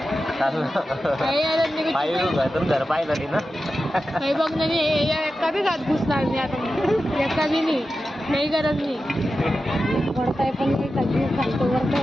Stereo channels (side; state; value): both; normal; correlation 0.92